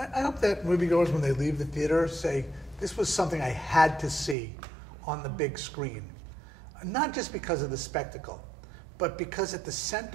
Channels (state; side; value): drops out; left; at 4.4 s